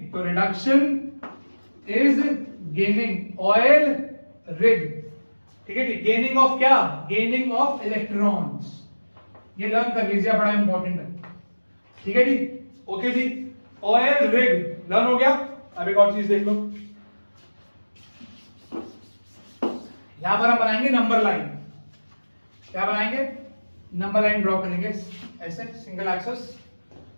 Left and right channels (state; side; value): inverted; both; correlation -1.00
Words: तो reduction is gaining, oil rig. ठीक है जी, गेनिंग ऑफ क्या? Gaining of electrons. ये लर्न कर लीजिए, बड़ा इंपॉर्टेंट है। ठीक है जी, ओके जी, ऑयल रिग लर्न हो गया। अब एक और चीज देख लो, यहां पर हम बनाएंगे नंबर लाइन। क्या बनाएंगे? नंबर लाइन ड्रॉ करेंगे ऐसे, सिंगल एक्सेस।